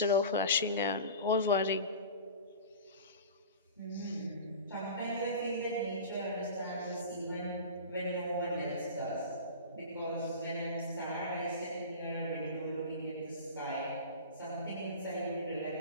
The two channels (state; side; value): inverted; both; correlation -0.34